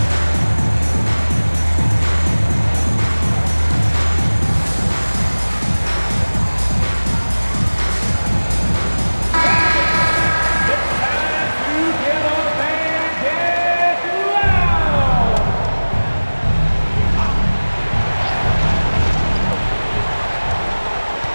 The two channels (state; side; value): inverted; both; correlation -1.00